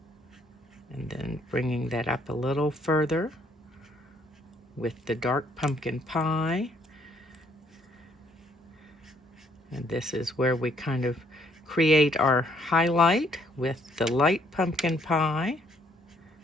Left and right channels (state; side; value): normal; both; correlation 0.67